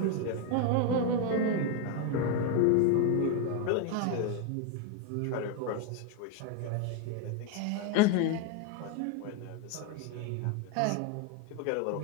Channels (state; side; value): different; both; correlation 0.01